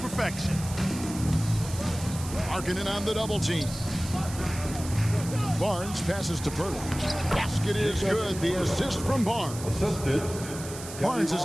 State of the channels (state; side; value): noise; right; hiss, 12 dB below the sound